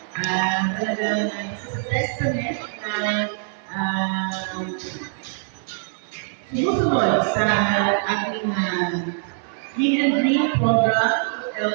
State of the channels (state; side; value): silent; left; 63 dB below the other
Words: Talagang isa sa testament na sumusunod sa ating Clean and Green program